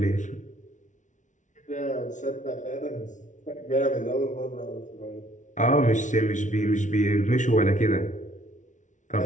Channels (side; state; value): right; late; 0.37 ms